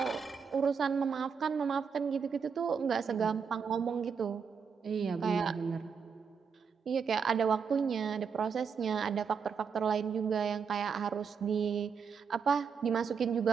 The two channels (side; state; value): left; quieter; 6.2 dB